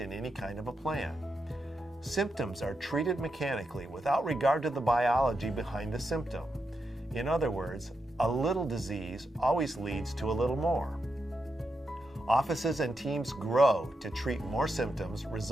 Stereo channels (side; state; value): both; normal; correlation 0.85